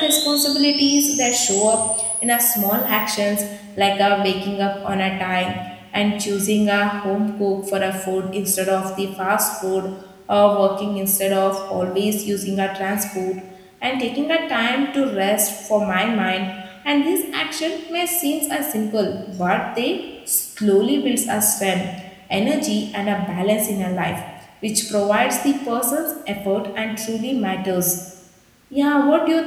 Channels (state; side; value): identical; both; correlation 1.00